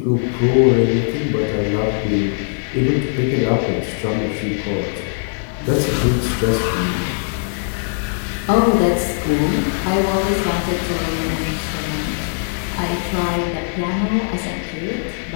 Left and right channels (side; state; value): right; silent; digital silence